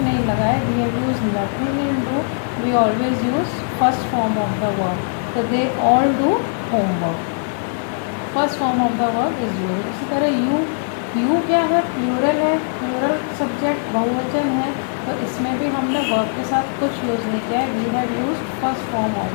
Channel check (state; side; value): silent; right; digital silence